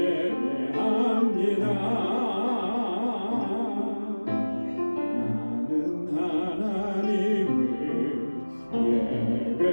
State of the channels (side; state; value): both; inverted; correlation -1.00